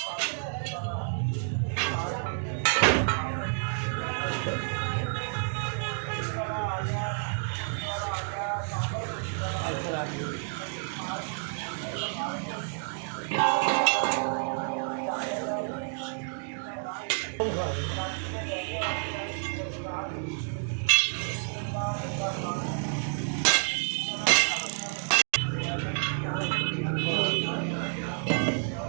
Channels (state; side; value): silent; left; 56 dB below the other